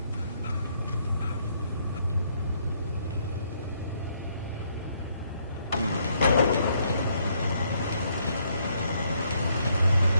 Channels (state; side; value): inverted; both; correlation -0.71